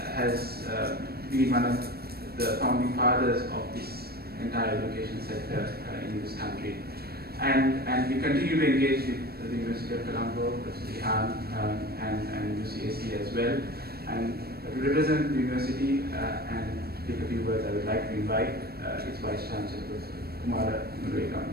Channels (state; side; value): late; left; 0.46 ms